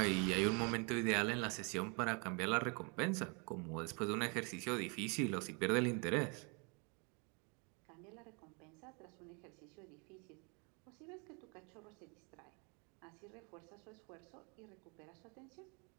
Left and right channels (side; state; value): left; quieter; 33.9 dB